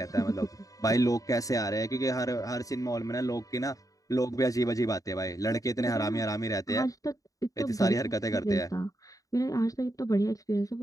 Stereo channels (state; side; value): late; right; 0.17 ms